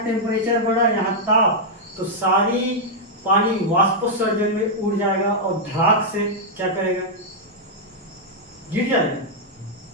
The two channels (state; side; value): normal; both; correlation -0.05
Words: टेम्परेचर बढ़ा है, यहाँ ताप, तो सारी पानी वाष्पोत्सर्जन में उड़ जाएगा और धड़ाक से क्या करेगा? गिर जाएगा।